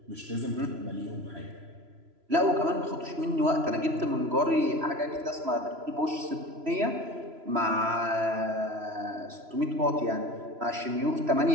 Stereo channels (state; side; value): late; left; 3.0 ms